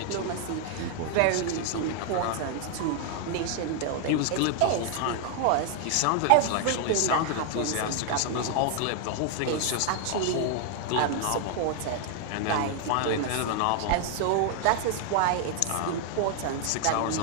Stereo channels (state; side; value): different; both; correlation 0.00